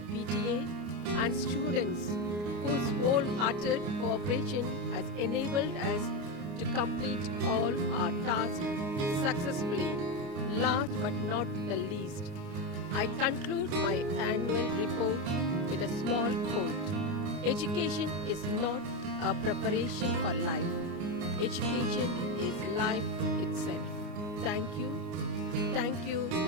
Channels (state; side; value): late; left; 29 ms